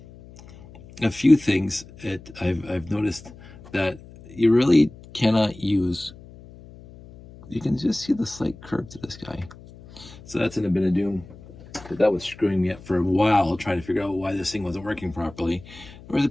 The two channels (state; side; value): noise; left; hum, 20 dB below the sound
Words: few things I've noticed that you really cannot use. You can just see the slight curve to this guy. So that's in a bit of doom. But that was screwing me up for a while, trying to figure out why this thing wasn't working properly. There was a